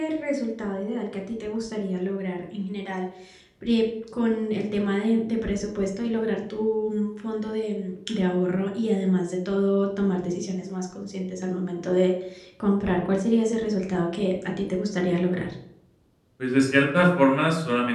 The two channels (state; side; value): identical; both; correlation 1.00